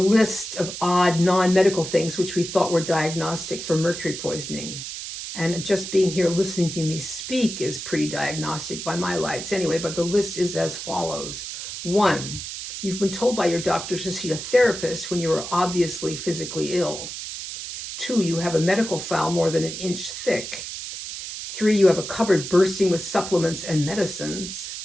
of odd non-medical things which we thought were diagnostic for mercury poisoning. And just being here listening to me speak is pretty diagnostic by my lights anyway, but the list is as follows. 1, you've been told by your doctor to see a therapist when you are obviously physically ill. 2, you have a medical file more than an inch thick. 3, you have a cupboard bursting with supplements and medicines.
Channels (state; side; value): noise; right; hiss, 8 dB below the sound